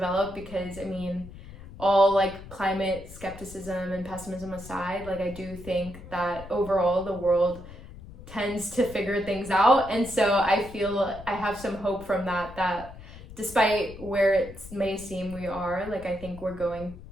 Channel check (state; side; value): noise; left; rumble, 15 dB below the sound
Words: because I mean, all like climate skepticism and pessimism aside, like I do think that overall the world tends to figure things out, and so I feel I have some hope from that despite where it may seem we are, like I think we're going